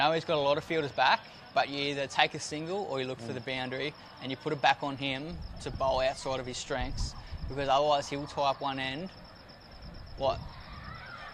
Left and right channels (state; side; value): identical; both; correlation 1.00